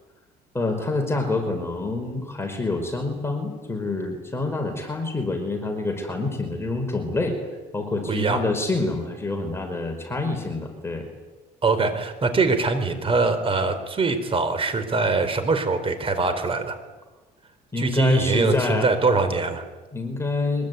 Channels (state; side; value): normal; both; correlation 0.53